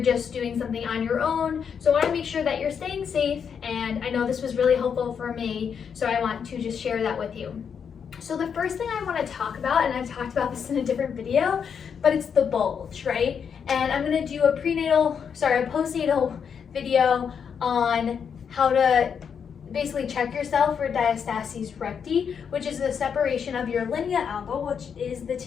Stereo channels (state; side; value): quieter; right; 7.1 dB